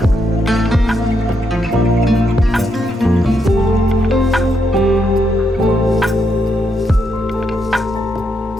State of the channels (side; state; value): both; normal; correlation 0.80